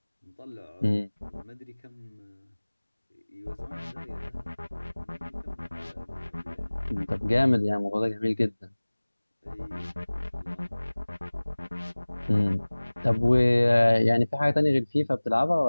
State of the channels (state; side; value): inverted; both; correlation -1.00